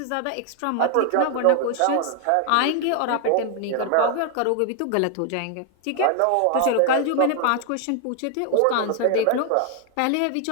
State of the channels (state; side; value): different; both; correlation 0.00